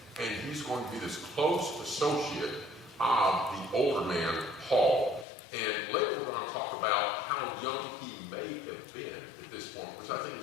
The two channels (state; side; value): drops out; right; at 5.2 s